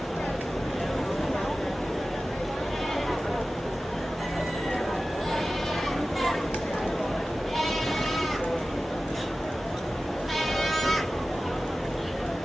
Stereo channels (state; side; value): normal; both; correlation 0.96